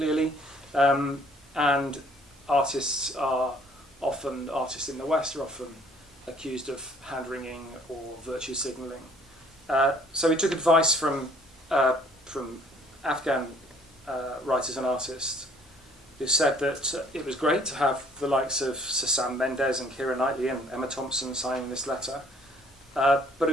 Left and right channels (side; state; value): both; normal; correlation 0.59